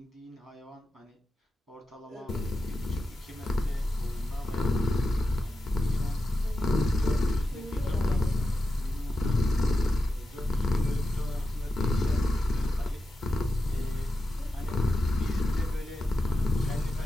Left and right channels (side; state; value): both; normal; correlation 0.91